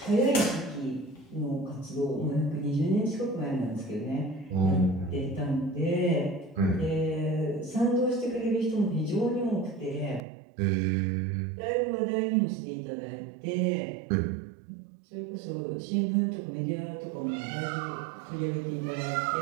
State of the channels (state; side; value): drops out; left; at 10.2 s